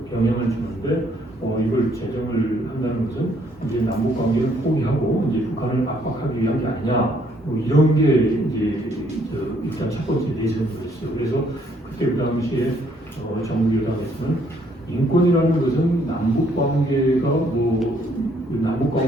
영향을 주는데 이걸 제정을 한다는 것은 이제 남북 관계를 포기하고 이제 북한을 압박하기 위한 게 아니냐 뭐 이런 게 이제 일단 첫 번째 내세였어요. 그래서 그때 그 당시에 정부 여당에서는 인권이라는 것은 남북 관계가 남북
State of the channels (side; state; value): both; normal; correlation 0.67